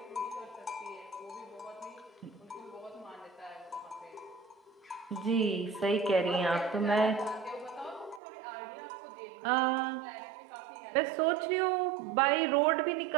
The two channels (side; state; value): left; drops out; at 8.2 s